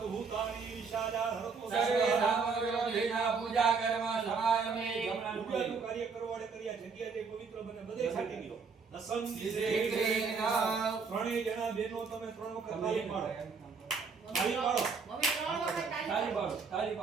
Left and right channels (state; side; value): quieter; left; 5.1 dB